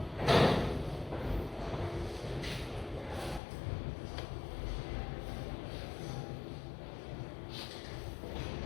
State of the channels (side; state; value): right; drops out; at 3.4 s